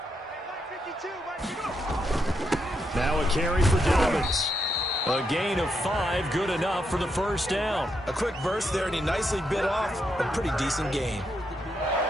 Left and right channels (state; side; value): normal; both; correlation 0.80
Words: Now a carry for Dobbins. A gain of 5, good enough for the first down. A quick burst there, and he nicely bit off a pretty decent gain.